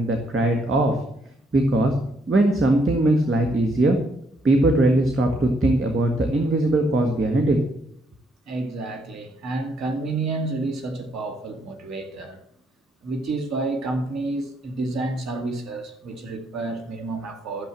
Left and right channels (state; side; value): normal; both; correlation 0.73